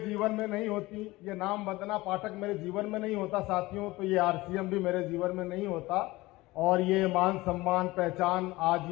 में नहीं होती, ये नाम वंदना पाठक मेरे जीवन में नहीं होता साथियों, तो ये आरसीएम भी मेरे जीवन में नहीं होता और ये मान सम्मान पहचान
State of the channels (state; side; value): quieter; right; 19.9 dB